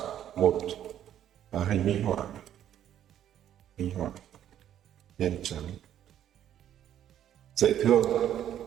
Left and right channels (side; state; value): left; quieter; 10.8 dB